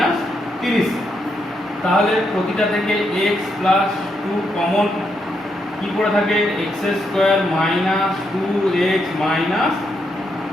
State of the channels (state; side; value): normal; both; correlation 0.79